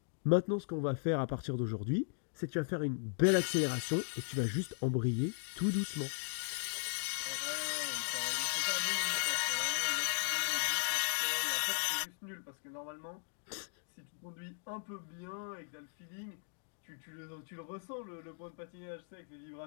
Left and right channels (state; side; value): silent; right; digital silence